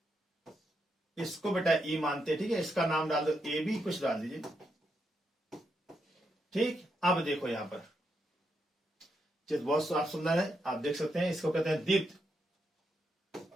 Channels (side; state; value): both; normal; correlation 0.81